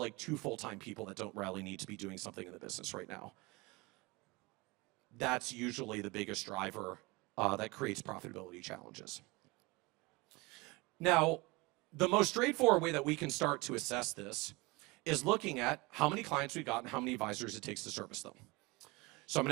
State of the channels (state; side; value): quieter; left; 24.4 dB